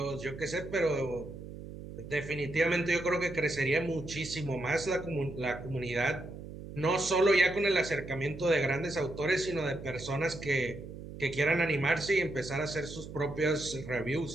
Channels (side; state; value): right; noise; hum, 12 dB below the sound